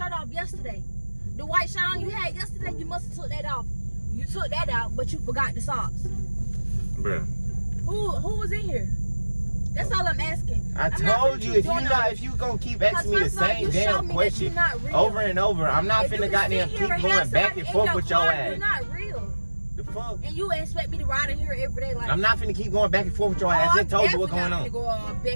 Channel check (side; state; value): both; inverted; correlation -1.00